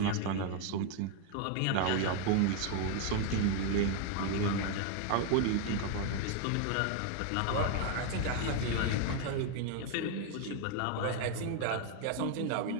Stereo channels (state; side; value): different; both; correlation 0.01